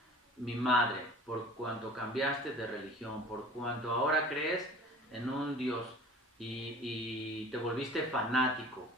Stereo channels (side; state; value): both; normal; correlation 0.44